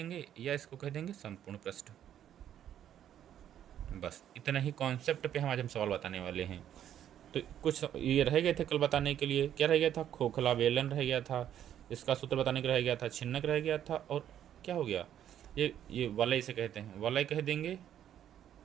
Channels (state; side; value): quieter; left; 10.5 dB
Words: या इसको कह देंगे संपूर्ण पृष्ठ। बस इतना ही कॉन्सेप्ट पे हम सवाल बताने वाले हैं। तो कुछ ये रह गए थे कल बताने के लिए, क्या रह गया था, खोखला बेलन रह गया था, इसका सूत्र बताने का रह गया था, छिन्नक रह गया था, और क्या हो गया, ये वलय इसे कहते हैं, वलय कह देंगे